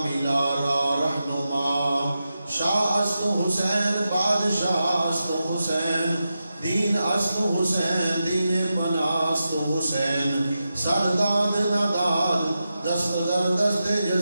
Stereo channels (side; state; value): both; inverted; correlation -0.90